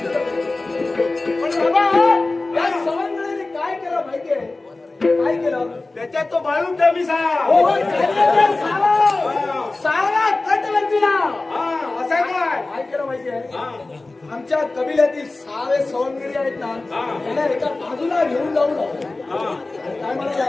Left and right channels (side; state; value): right; quieter; 3.2 dB